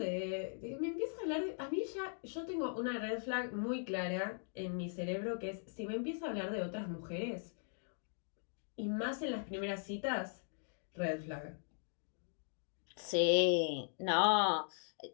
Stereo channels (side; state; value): right; silent; digital silence